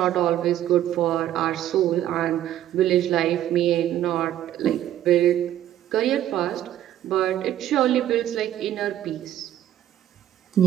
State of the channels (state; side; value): quieter; left; 12.2 dB